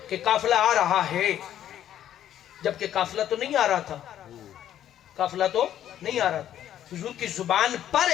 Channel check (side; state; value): right; quieter; 11.1 dB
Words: کہ قافلہ آ رہا ہے, جبکہ قافلہ تو نہیں آ رہا تھا, قافلہ تو نہیں آ رہا تھا. حضور کی زبان پر